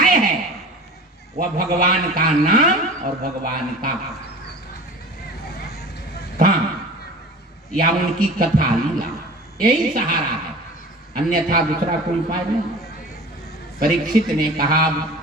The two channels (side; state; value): both; normal; correlation 0.38